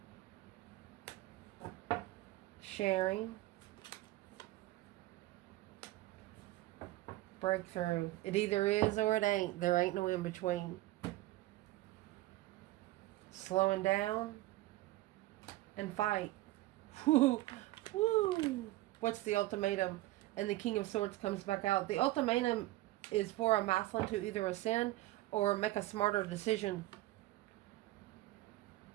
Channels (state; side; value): quieter; left; 17.5 dB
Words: Sharing. Breakthrough. It either is or it ain't. There ain't no in between. Slowing down and fight. Woo. Woo. What's the ultimatum? And the King of Swords comes back out. The ultimatum is for a masculine to either ascend or make a smarter decision.